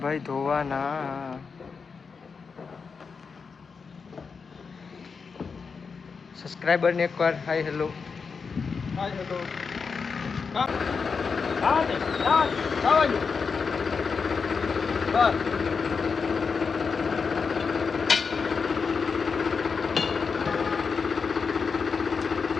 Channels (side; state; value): right; quieter; 5.3 dB